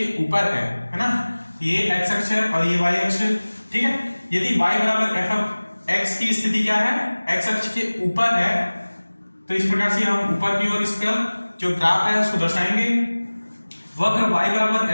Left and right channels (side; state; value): both; inverted; correlation -1.00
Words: ऊपर है ना, ये x अक्ष है और ये y अक्ष। ठीक है, यदि y बराबर एफ एक्स की स्थिति क्या है, x अक्ष के ऊपर है, तो इस प्रकार से हम ऊपर की ओर इसका जो ग्राफ है उसको दर्शाएंगे। वक्र y बराबर